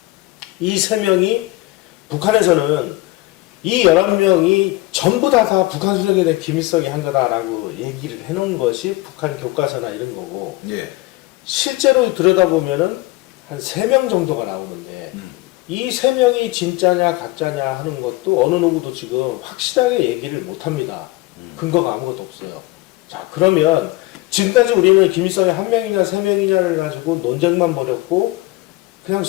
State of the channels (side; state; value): right; quieter; 19.9 dB